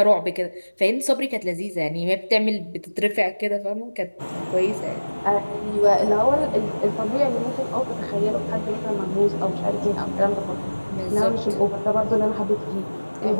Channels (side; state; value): both; inverted; correlation -1.00